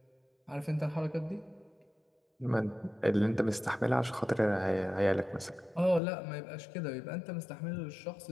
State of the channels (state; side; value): drops out; right; at 6.0 s